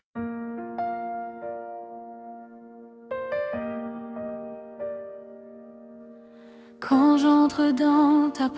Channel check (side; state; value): both; identical; correlation 1.00